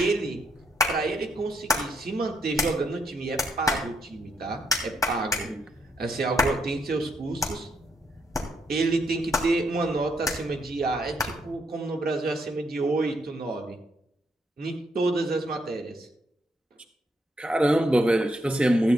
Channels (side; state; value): both; normal; correlation 0.77